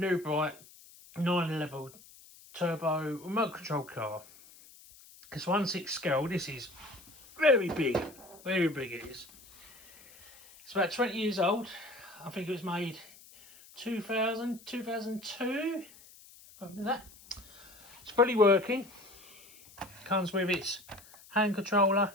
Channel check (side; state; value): left; noise; hiss, 22 dB below the sound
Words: bright 911 turbo remote control car. It's 1.6 scale. This is very big it is. It's about 20 years old. I think it was made 2002, something like that. It's fully working. Comes with its hand controller,